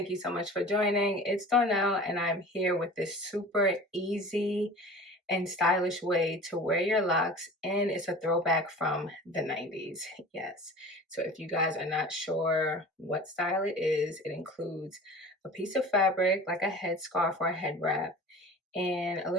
you so much for joining. It's Donnell, and I'm here with this super easy and stylish way to wear your locks, and it's a throwback from the 90s. Yes. So if you guys are not sure what style it is, it includes a piece of fabric like a headscarf or a head wrap and a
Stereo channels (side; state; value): both; normal; correlation 0.39